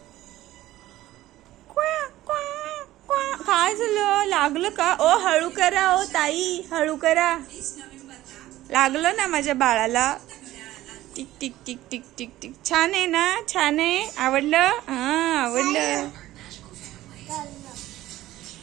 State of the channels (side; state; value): left; quieter; 15.4 dB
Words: काय झालं? लागलं का? ओ हळू करा, ओ ताई हळू करा. लागलं ना माझ्या बाळाला. Tick tick tick tick tick tick. छान आहे ना? छान आहे? आवडलं? हा, आवडलं.